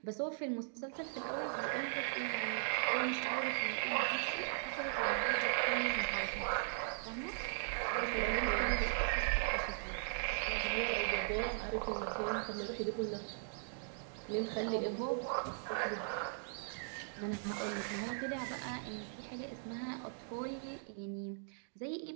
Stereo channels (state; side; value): silent; left; digital silence